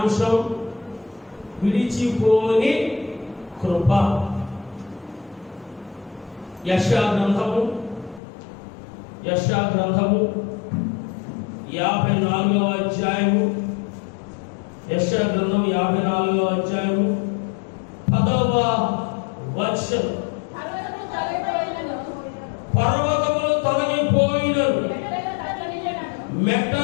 విడిచిపోని కృప. యెషయా గ్రంథము 54వ అధ్యాయము. యెషయా గ్రంథం 54వ అధ్యాయము 10వ వచనం. పర్వతములు తొలగిపోయినను,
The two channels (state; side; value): drops out; right; at 8.2 s